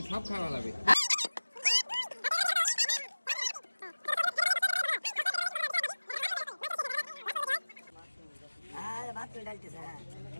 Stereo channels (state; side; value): inverted; both; correlation -1.00